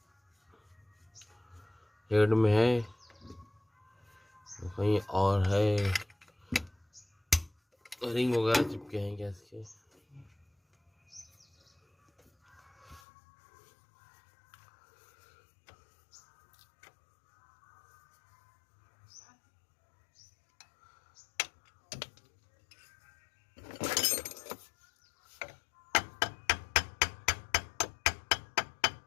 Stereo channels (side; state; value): right; drops out; at 13.0 s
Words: हेड में है कहीं और है, रिंग वगैरह चिपके हैं गैस के।